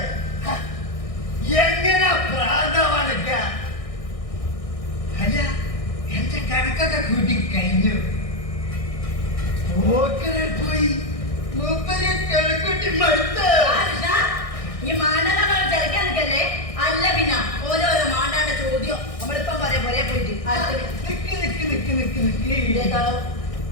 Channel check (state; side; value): late; right; 1.6 ms